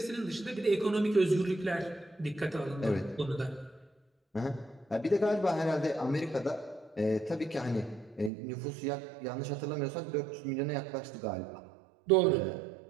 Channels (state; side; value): drops out; left; at 8.3 s